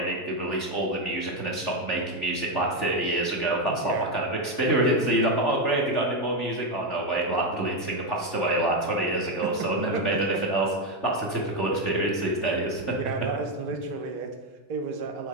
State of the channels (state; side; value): late; right; 3.4 ms